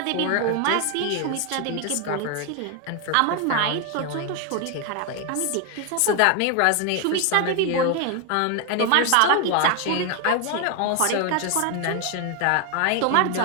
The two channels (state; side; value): different; both; correlation 0.01